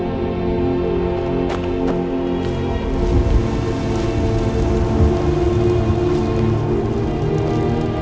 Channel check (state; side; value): identical; both; correlation 1.00